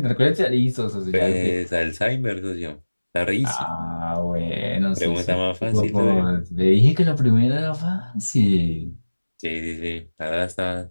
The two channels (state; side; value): inverted; both; correlation -1.00